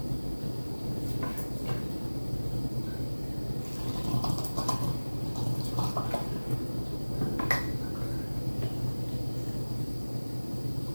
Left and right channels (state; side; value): inverted; both; correlation -1.00